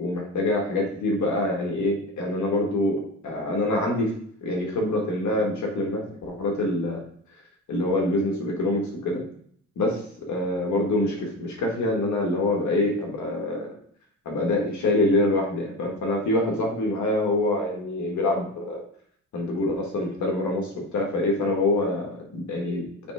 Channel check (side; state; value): both; normal; correlation 0.26